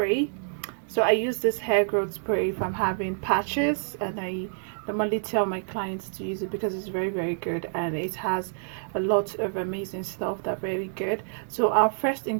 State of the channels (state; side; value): silent; left; digital silence